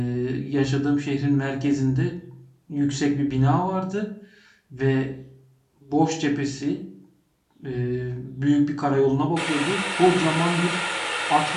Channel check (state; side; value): identical; both; correlation 1.00